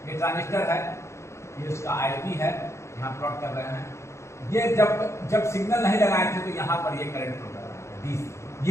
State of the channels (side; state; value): right; late; 0.14 ms